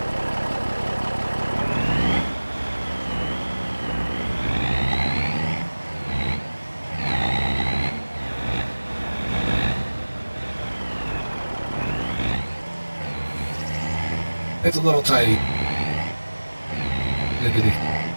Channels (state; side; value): inverted; both; correlation -1.00